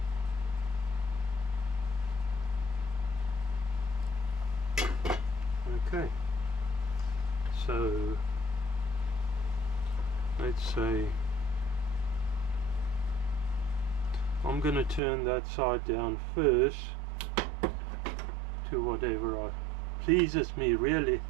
Okay, so let's say I'm going to turn that side down first to whatever pleases me, really.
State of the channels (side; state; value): left; drops out; at 15.0 s